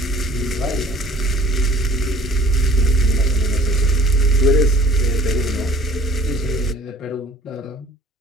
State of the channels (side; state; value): both; normal; correlation 0.52